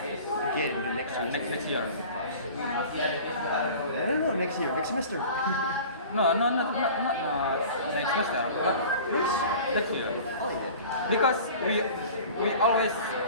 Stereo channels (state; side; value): inverted; both; correlation -0.41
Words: again in the next semester. Next year. No, next year, next semester. No, not next semester, but next year. Oh yeah. Because we always